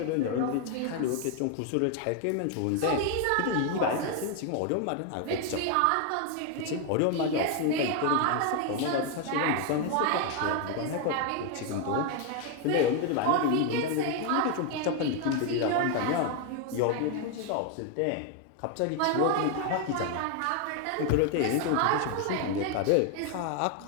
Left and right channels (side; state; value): both; different; correlation 0.01